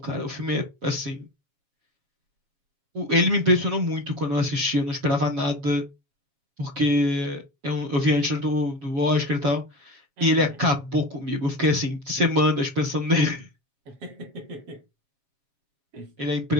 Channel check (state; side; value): late; left; 7.3 ms